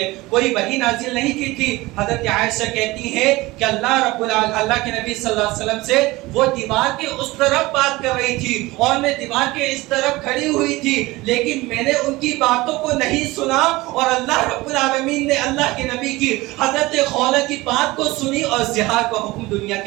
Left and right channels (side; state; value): left; quieter; 20.4 dB